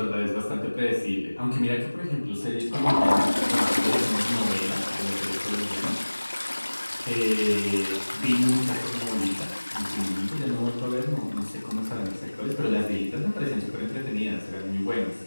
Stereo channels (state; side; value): inverted; both; correlation -1.00